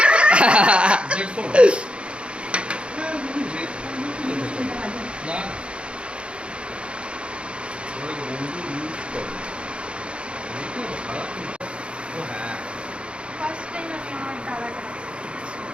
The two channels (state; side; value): late; left; 0.057 ms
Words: ना ফার্স্ট টাইম আমি আমার দাদাটা